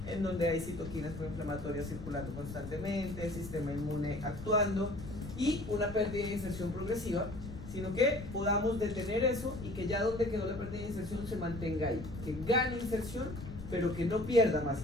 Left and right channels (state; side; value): noise; left; rumble, 11 dB below the sound